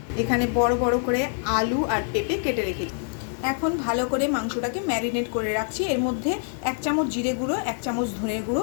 এখানে বড় বড় করে আলু আর পেঁপে কেটে রেখেছি। এখন ভালো করে মাংসটাকে ম্যারিনেট করে রাখছি। এর মধ্যে 1 চামচ জিরে গুঁড়ো, 1 চামচ ধনের গুঁড়ো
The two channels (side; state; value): right; silent; digital silence